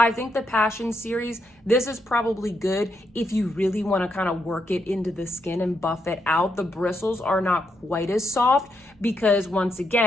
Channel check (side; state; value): both; normal; correlation 0.80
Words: think the Passion series, this is probably good if you really wanna kind of work it into the skin and buff it out. The bristles are not quite as soft because once